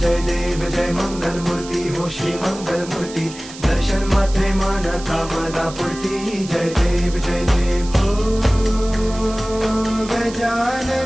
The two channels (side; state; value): right; noise; hiss, 15 dB below the sound